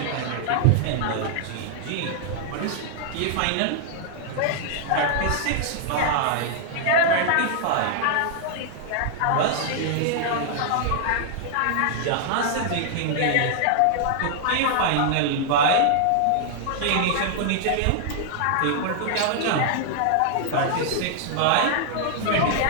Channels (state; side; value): different; both; correlation 0.00